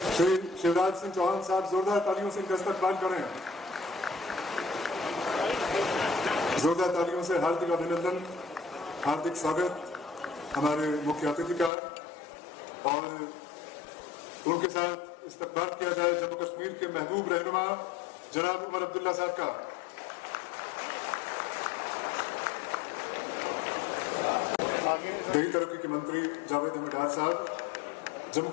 श्री शिवराज सिंह चौहान साहब जोरदार तालियों से इनका इस्तकबाल करें। जोरदार तालियों से हार्दिक अभिनंदन, हार्दिक स्वागत हमारे मुख्य अतिथि का, और उनके साथ इस्तकबाल किया जाए जम्मू कश्मीर के महबूब रहनुमा जनाब उमर अब्दुल्ला साहब का। देही तरक्की के मंत्री जावेद अहमद डार साहब, जम्मू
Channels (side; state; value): right; drops out; at 11.7 s